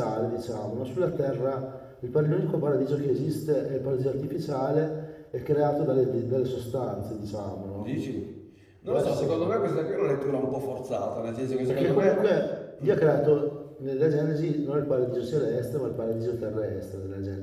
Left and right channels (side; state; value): both; identical; correlation 1.00